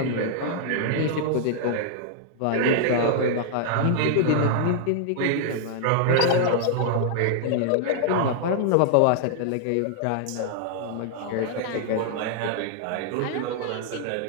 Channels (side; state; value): both; different; correlation -0.01